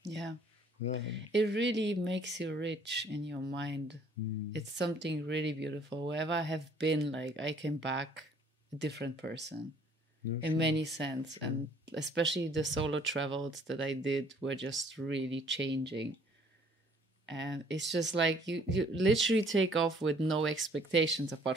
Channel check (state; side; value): normal; both; correlation 0.59